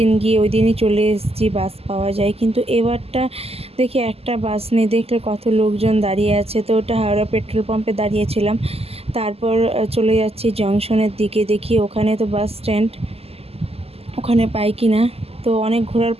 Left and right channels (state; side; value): late; left; 0.29 ms